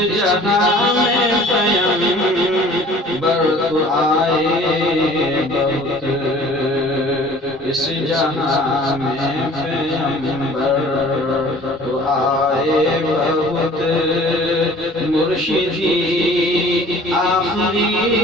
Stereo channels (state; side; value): normal; both; correlation 0.49